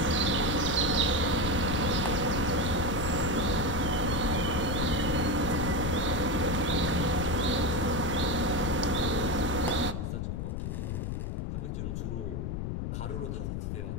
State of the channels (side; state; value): left; noise; rumble, 3 dB below the sound